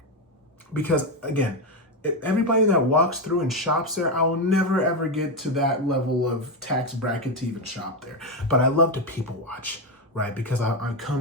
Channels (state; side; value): normal; both; correlation 0.09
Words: Because again, everybody that walks through and shops there, I will never ever get to that level of tax bracket to even shop there. But I love to people watch, right? Because I